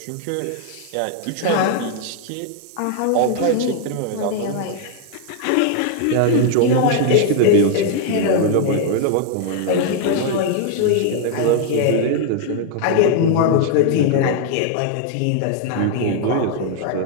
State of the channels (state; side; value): different; both; correlation 0.00